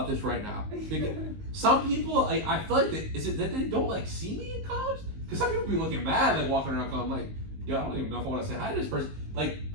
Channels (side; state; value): left; late; 19 ms